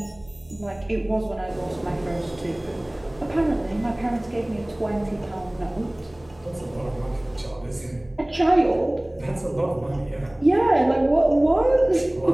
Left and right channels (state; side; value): noise; right; hum, 27 dB below the sound